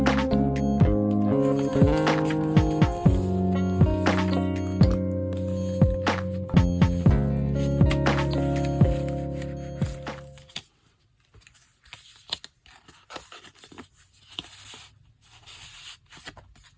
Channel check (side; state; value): both; identical; correlation 1.00